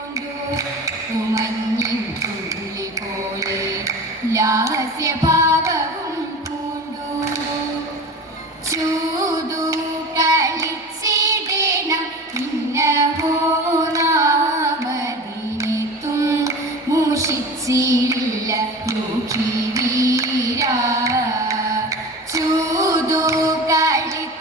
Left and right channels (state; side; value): normal; both; correlation 0.33